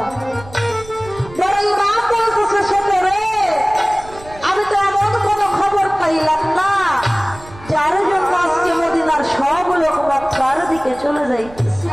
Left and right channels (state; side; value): noise; right; rumble, 19 dB below the sound